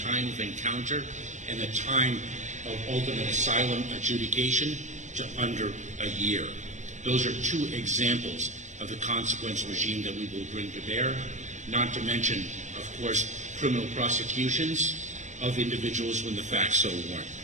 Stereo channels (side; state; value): left; late; 0.35 ms